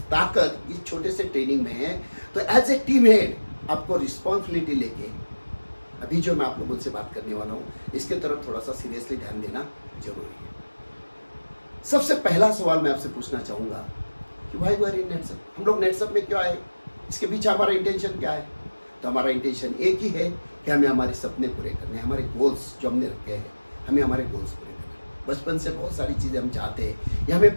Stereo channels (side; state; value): both; inverted; correlation -1.00